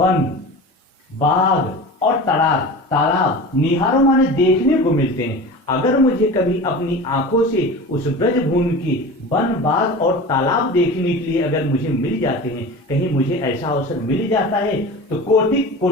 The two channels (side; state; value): both; normal; correlation 0.34